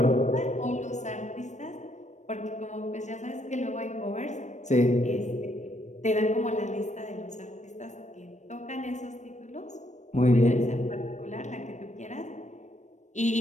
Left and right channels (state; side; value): late; right; 0.34 ms